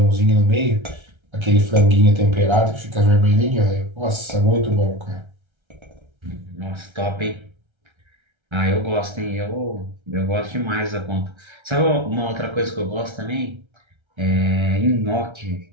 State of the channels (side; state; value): left; late; 1.3 ms